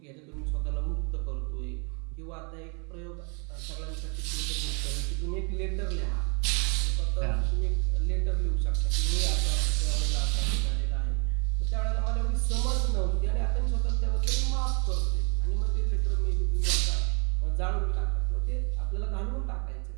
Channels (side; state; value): left; quieter; 35.0 dB